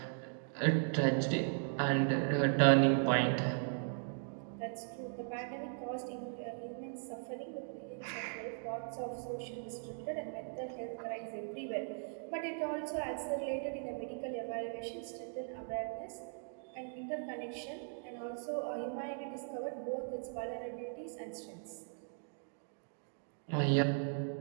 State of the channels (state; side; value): silent; left; digital silence